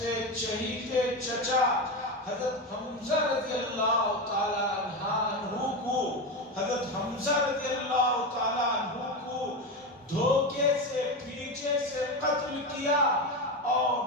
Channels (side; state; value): both; normal; correlation 0.17